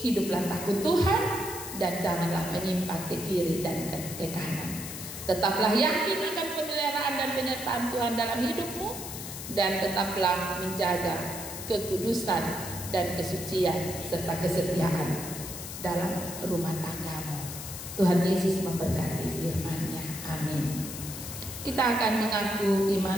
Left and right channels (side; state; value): left; noise; hiss, 9 dB below the sound